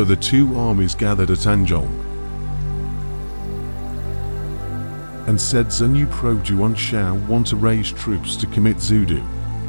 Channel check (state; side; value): inverted; both; correlation -1.00